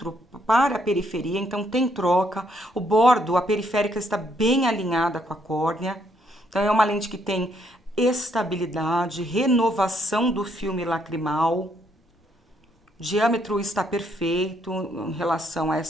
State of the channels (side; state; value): both; normal; correlation 0.72